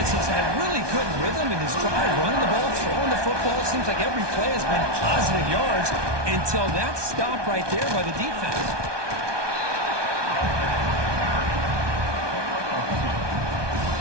has had really good rhythm in this drive, running the ball, throwing the football. It seems like every play has been positive yards until that stop right there by the defense.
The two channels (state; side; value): late; left; 1.2 ms